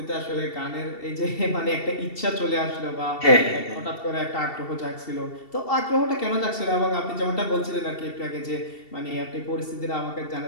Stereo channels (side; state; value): right; late; 2.7 ms